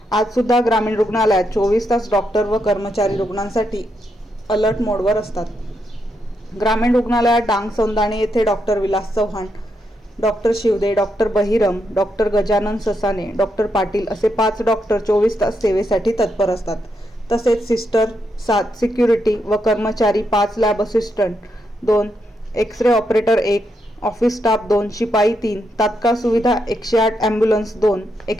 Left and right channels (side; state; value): both; normal; correlation 0.81